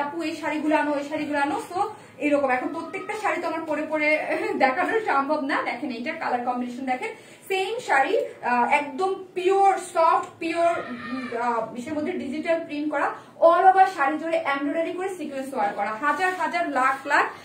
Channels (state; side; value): identical; both; correlation 1.00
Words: আপু এই শাড়িগুলো আনো, ওই শাড়িগুলো আনো, তো এরকম এখন প্রত্যেকটা শাড়ি তো আমার পরে পরে দেখানো সম্ভব না। দেখেন এইটার কালার কম্বিনেশন দেখেন, সেম শাড়ি একদম পিওর সফট পিওর বিষয়ের মধ্যে ডিজিটাল প্রিন্ট করা, অল ওভার শাড়ি জুড়ে এমব্রয়ডারি করে সিকোয়েন্স ওয়ার্ক করা, হাজার হাজার লাখ লাখ